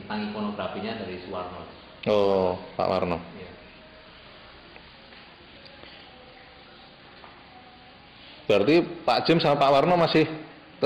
ikonografinya dari Suwarno. Oh, Pak Warno. Ya. Berarti Pak Jim sama Pak Warno masih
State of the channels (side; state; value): both; identical; correlation 1.00